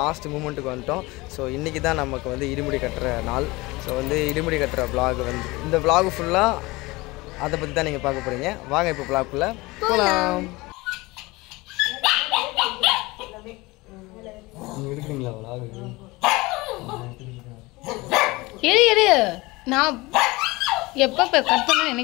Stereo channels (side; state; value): right; quieter; 22.3 dB